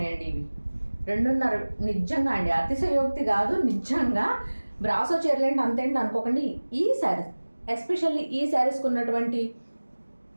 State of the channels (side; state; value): both; inverted; correlation -1.00